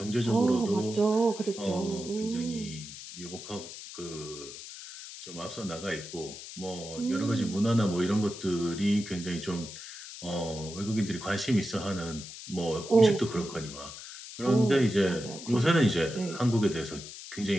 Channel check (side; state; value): left; noise; hiss, 12 dB below the sound